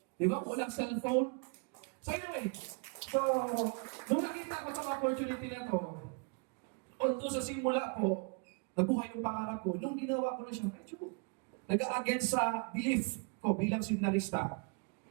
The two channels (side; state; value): left; quieter; 34.9 dB